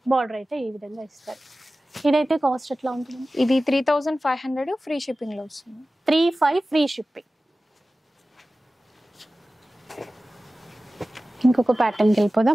బార్డర్ అయితే ఈ విధంగా ఇస్తారు. ఇదైతే కాస్ట్ ఎట్లా ఉంటుంది? ఇది 3500 ఫ్రీ షిప్పింగ్ లో వస్తుంది. 35 ఫ్రీ షిప్పింగ్. ఇంకొక ప్యాటర్న్కి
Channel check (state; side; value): normal; both; correlation 0.96